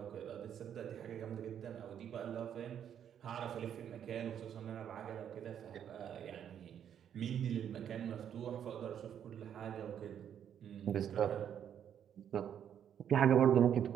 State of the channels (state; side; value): quieter; left; 9.1 dB